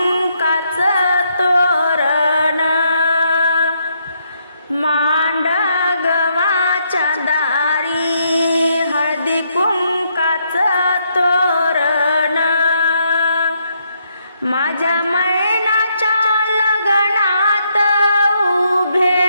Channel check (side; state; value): both; inverted; correlation -0.75